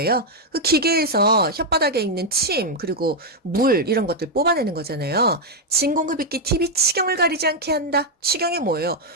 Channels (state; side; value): normal; both; correlation 0.00